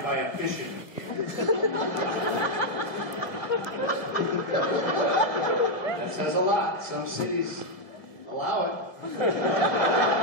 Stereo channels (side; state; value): right; late; 1.1 ms